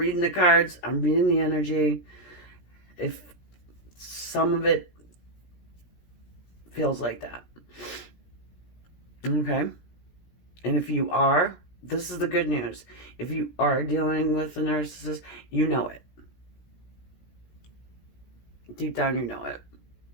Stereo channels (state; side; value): late; right; 17 ms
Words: the cards. I'm reading the energy. If some of it feels like that. Okay? And if you are, this is the good news. If you are dealing with a narcissist, you know it. Deep down, you know it.